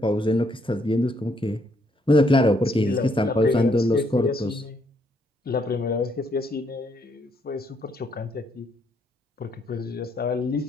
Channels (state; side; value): normal; both; correlation 0.72